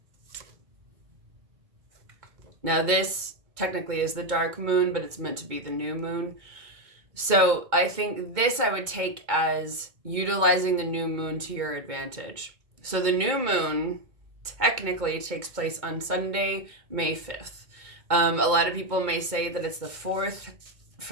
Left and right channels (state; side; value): late; left; 2.2 ms